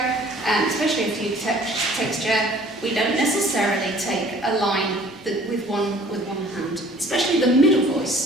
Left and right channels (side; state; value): both; normal; correlation 0.52